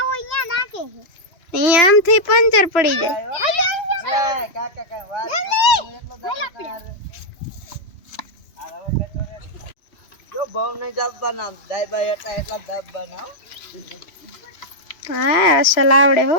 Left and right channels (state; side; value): late; right; 3.0 ms